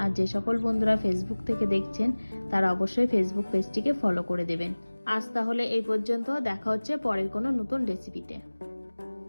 যে সকল বন্ধুরা ফেসবুক থেকে দেখছেন তারা অবশ্যই ফেসবুক পেজটিকে ফলো করে দেবেন। আজ তাহলে এই পর্যন্ত, দেখা হচ্ছে পরের কোনো নতুন রেসিপিতে।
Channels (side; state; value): both; inverted; correlation -1.00